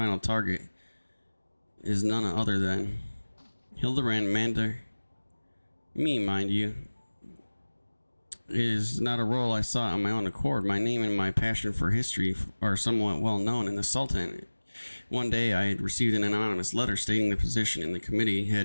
target, is none other than Hildebrand Mander. Me, mind you. It is not a role I sought on my own accord. My name and my passion for history are somewhat well known in the Sultanate. One day I had received an anonymous letter stating the position in the committee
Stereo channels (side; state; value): both; inverted; correlation -1.00